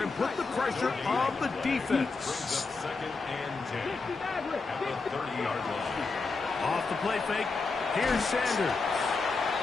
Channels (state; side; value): quieter; right; 4.1 dB